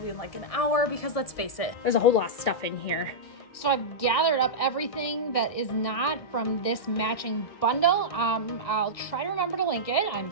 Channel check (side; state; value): right; late; 1.7 ms